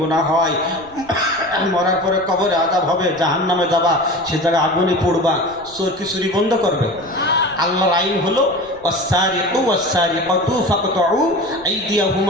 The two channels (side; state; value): left; noise; rumble, 25 dB below the sound